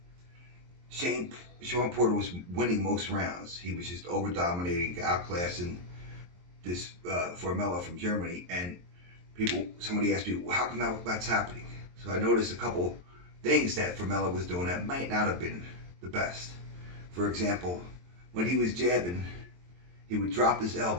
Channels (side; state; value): left; late; 23 ms